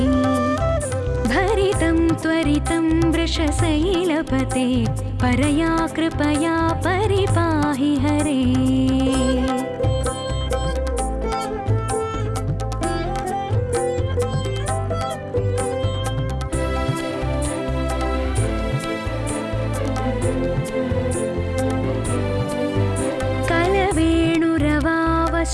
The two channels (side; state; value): both; identical; correlation 1.00